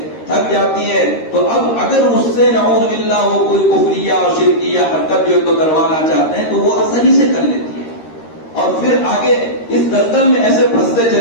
تھک جاتی ہے، تو اب اگر اس سے نعوذ باللہ وہ کوئی کفریہ اور شرکیہ حرکت جو تو کروانا چاہتے ہیں تو وہ آسانی سے کر لیتی ہے، اور پھر آگے اس دلدل میں ایسے پھنستے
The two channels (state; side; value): late; right; 13 ms